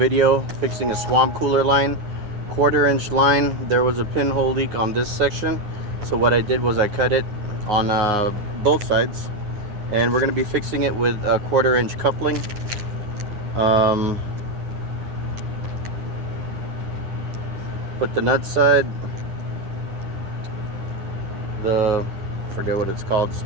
fixing a swamp cooler line, 1/4 inch line. There was a pinhole leak on this section, so what I did was I cut it on both sides, and we're going to be fixing it with a 1/4 inch coupling. Put the nut side, forget what it's called,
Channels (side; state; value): left; late; 9.6 ms